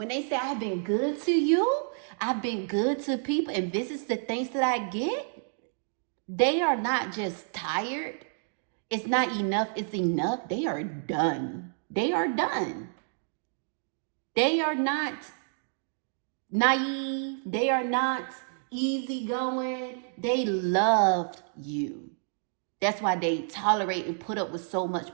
they say, I've been good to you, I've been good to people, and this is the thanks that I get, they are not just tired. It's not enough. It's enough. They are done. They are done. They are not naive. They are not easygoing. They loved you. That's why they tolerate and put up with so much.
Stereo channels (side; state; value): left; silent; digital silence